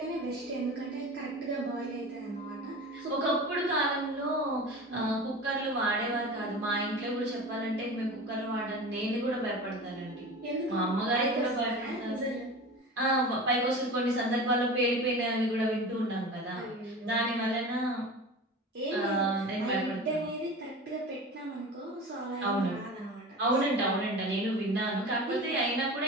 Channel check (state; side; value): normal; both; correlation 0.33